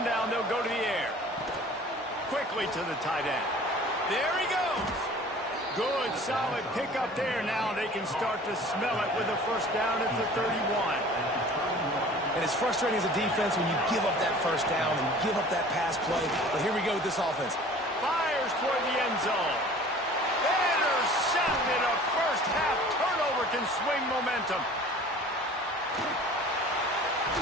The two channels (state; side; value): normal; both; correlation 0.46